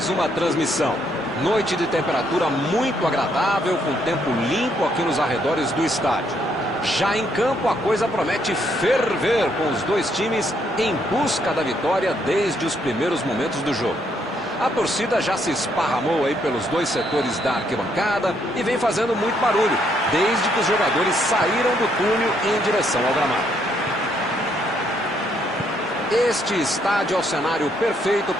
uma transmissão. Noite de temperatura muito agradável, com tempo limpo aqui nos arredores do estádio. Já em campo, a coisa promete ferver, com os dois times em busca da vitória desde os primeiros momentos do jogo. A torcida já se esparramou aí pelos dois setores da arquibancada e vem fazendo muito barulho, desde que os jogadores saíram do túnel em direção ao gramado. Este estádio é o cenário perfeito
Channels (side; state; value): both; normal; correlation 0.72